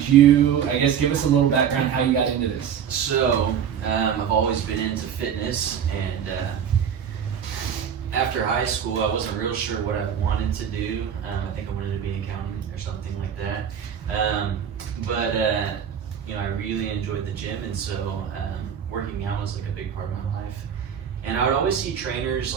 you, I guess, give us a little background how you got into this? So, I've always been into fitness, and after high school, I wasn't real sure what I wanted to do. I think I wanted to be an accountant or something like that. But I really enjoyed the gym, and so working out was like a big part of my life. And I would always see trainers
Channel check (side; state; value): left; quieter; 8.4 dB